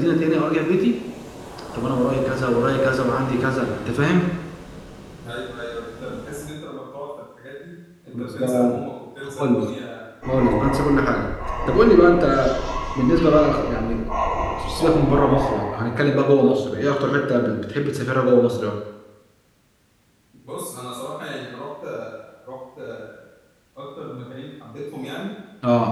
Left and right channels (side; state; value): both; identical; correlation 1.00